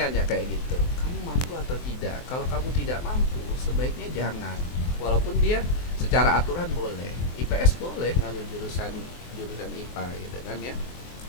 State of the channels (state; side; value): late; right; 23 ms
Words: nanya kayak gitu, kamu mampu atau tidak? Kalau kamu tidak mampu, sebaiknya jangan. Walaupun dia secara aturan boleh, IPS boleh ngambil jurusan IPA gitu kan ya.